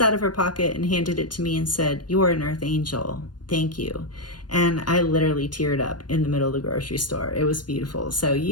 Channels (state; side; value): late; right; 0.70 ms